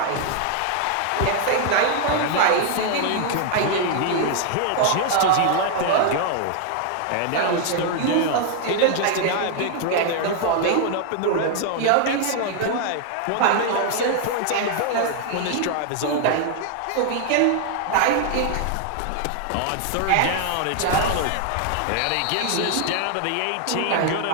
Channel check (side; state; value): both; different; correlation 0.00